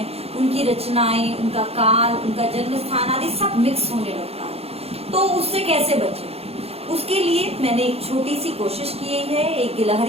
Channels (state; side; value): late; left; 0.29 ms